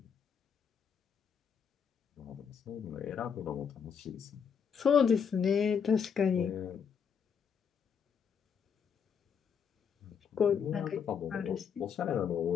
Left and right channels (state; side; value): quieter; right; 7.0 dB